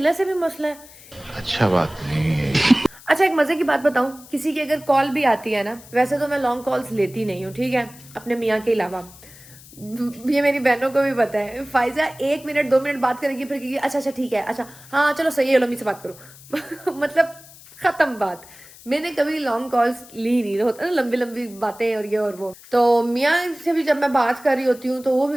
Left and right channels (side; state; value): left; noise; hiss, 21 dB below the sound